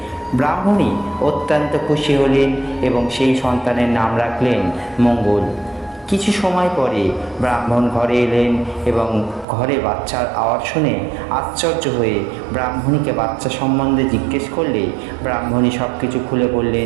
ব্রাহ্মণী অত্যন্ত খুশি হলেন এবং সেই সন্তানের নাম রাখলেন মঙ্গল। কিছু সময় পরে ব্রাহ্মণ ঘরে এলেন এবং ঘরে বাচ্চার আওয়াজ শুনে আশ্চর্য হয়ে ব্রাহ্মণীকে বাচ্চা সম্বন্ধে জিজ্ঞেস করলে ব্রাহ্মণী সব কিছু খুলে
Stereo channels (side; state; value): left; drops out; at 9.5 s